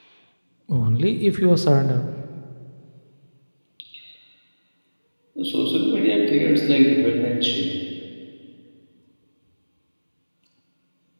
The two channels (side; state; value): both; inverted; correlation -1.00